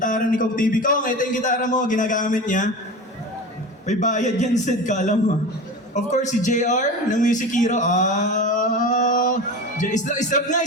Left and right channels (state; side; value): normal; both; correlation 0.30